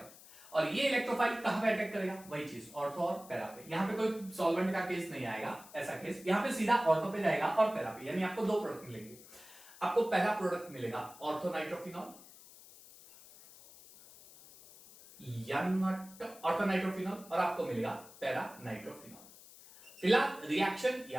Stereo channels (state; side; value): noise; left; hiss, 20 dB below the sound